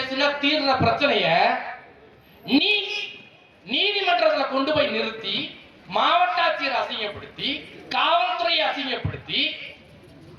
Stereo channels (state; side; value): identical; both; correlation 1.00